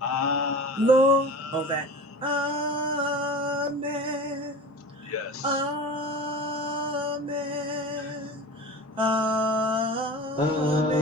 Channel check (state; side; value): normal; both; correlation 0.35